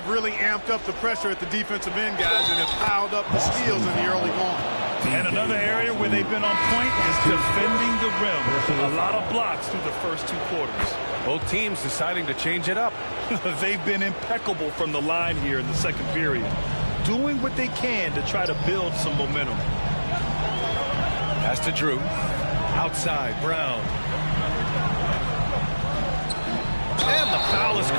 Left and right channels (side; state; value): both; inverted; correlation -1.00